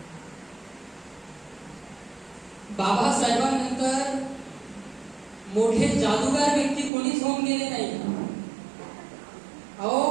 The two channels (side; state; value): left; drops out; at 6.9 s